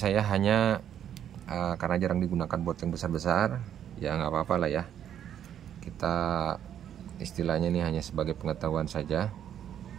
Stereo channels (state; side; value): quieter; left; 9.8 dB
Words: hanya karena jarang digunakan buat yang besar-besar, ya nggak apa-apa lah ya. Kita istilahnya ini hanya sebagai pengetahuan saja,